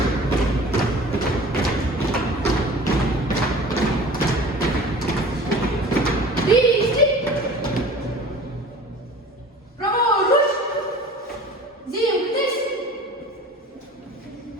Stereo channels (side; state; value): both; normal; correlation 0.42